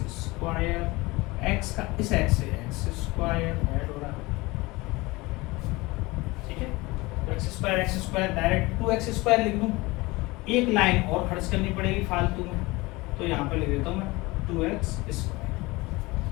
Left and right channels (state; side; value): quieter; right; 22.5 dB